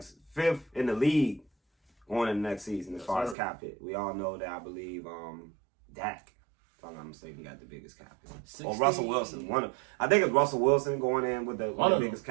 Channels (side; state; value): left; drops out; at 3.4 s